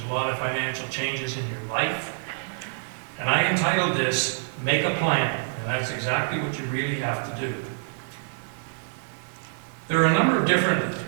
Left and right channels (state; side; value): silent; left; digital silence